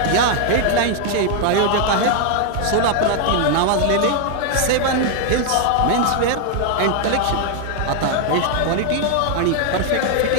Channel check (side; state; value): both; different; correlation 0.00